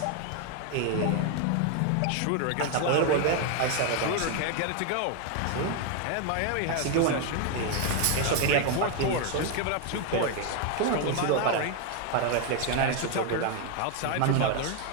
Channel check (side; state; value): both; different; correlation 0.01